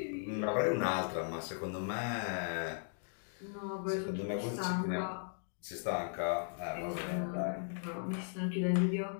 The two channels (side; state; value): right; silent; digital silence